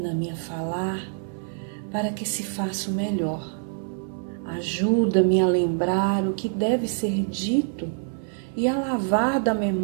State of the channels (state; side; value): silent; left; 61 dB below the other